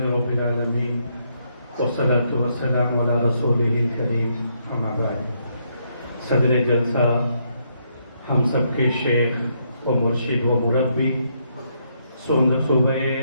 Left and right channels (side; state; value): both; inverted; correlation -0.75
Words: رب العالمین والصلاة والسلام علی رسولہ الکریم، اما بعد۔ صدر جلسہ، ہم سب کے شیخ و مرشد و مربی، صوبہ